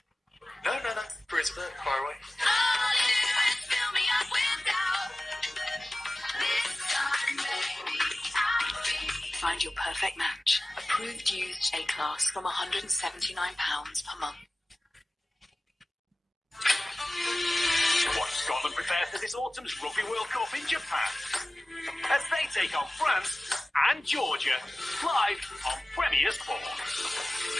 No. Praise a bit, far away. Find your perfect match. Approved used A-class from £179 per month. Watch Scotland prepare for this autumn's Rugby World Cup in Japan as they take on France and Georgia live on Premier Sport.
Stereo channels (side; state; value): both; normal; correlation 0.97